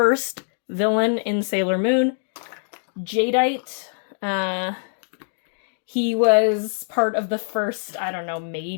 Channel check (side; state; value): right; silent; digital silence